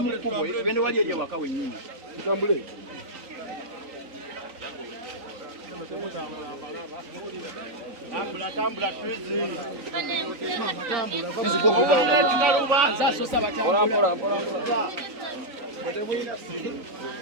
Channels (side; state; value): left; late; 3.9 ms